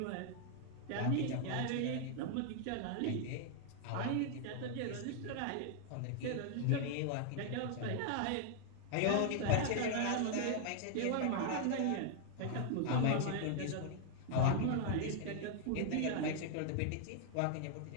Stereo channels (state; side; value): different; both; correlation 0.00